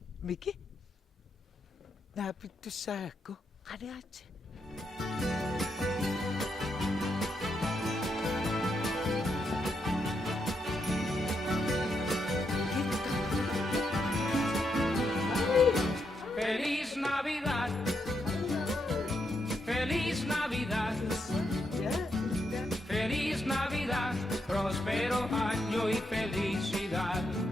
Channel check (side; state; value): both; normal; correlation 0.81